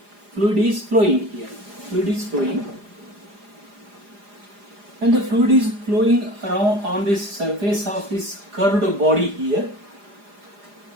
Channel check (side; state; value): left; late; 4.9 ms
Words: Fluid is flowing here. Fluid is flowing. When the fluid is flowing around on this surface of this curved body here,